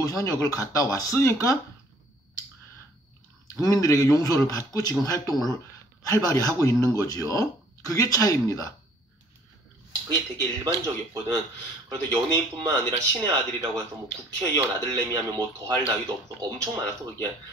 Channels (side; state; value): both; normal; correlation 0.58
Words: 현역을 갔다 왔으니까 국민들에게 용서를 받고 지금 활동을 활발히 하고 있는 거지요. 그게 차이입니다. 그게 되게 일반적이었거든. 그래도 연예인뿐만 아니라 신의 아들이라고 해서 국회의원 아들내미 하면 더할 나위도 없어. 엄청 많았어, 그게.